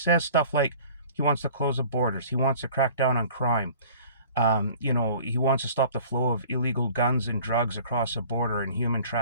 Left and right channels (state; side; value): inverted; both; correlation -0.48